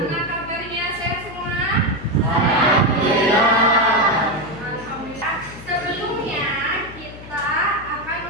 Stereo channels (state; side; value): noise; left; hum, 16 dB below the sound